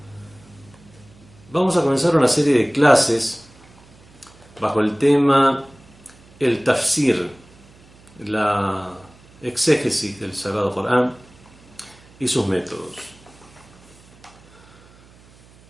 Vamos a comenzar una serie de clases bajo el tema el tafsir, la exégesis del Sagrado Corán y sus métodos.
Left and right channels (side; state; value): right; noise; hum, 26 dB below the sound